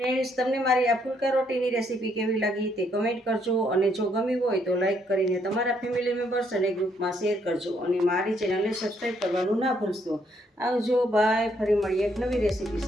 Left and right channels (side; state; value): both; normal; correlation 0.71